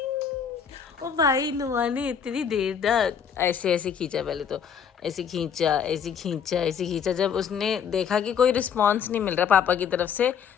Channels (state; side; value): quieter; right; 7.5 dB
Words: ओ भाई नुआ ने इतनी देर तक ऐसे ऐसे खींचा, पहले तो ऐसे खींचा ऐसे खींचा ऐसे खींचा। जब उसने देखा कि कोई रिस्पॉन्स नहीं मिल रहा पापा की तरफ से,